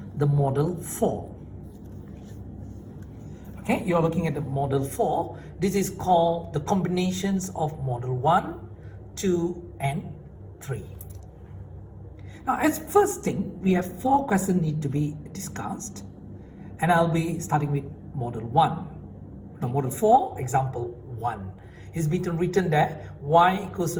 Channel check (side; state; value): both; identical; correlation 1.00